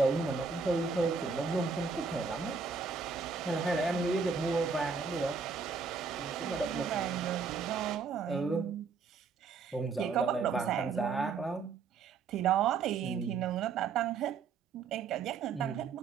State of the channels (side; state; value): left; quieter; 5.2 dB